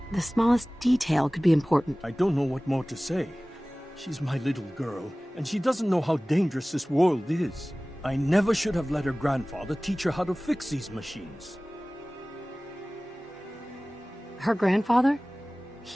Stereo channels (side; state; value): both; normal; correlation 0.98